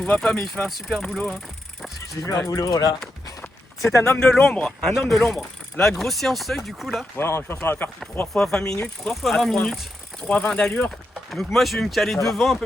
voit pas mais il fait un super boulot. Hein. J'ai vu un boulot là. C'est un homme de l'ombre, un homme de l'ombre. La grosse séance seuil du coup là. Ouais, je pense qu'on va faire 3 fois 20 minutes. 3 fois 20 minutes. 3,20 d'allure. Donc moi je vais me caler Ça va. devant à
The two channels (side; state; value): both; normal; correlation 0.85